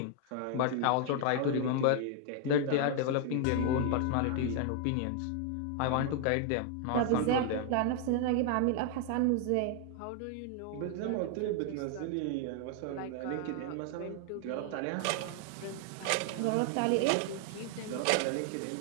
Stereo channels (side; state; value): both; different; correlation 0.00